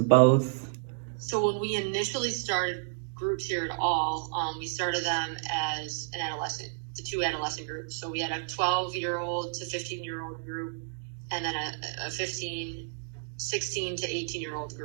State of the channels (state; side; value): silent; left; digital silence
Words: both? So when we initially started groups here at all, we started them as the 2 adolescent groups. So we had a 12-year-old to 15-year-old group, and then a 16 to 18-year-old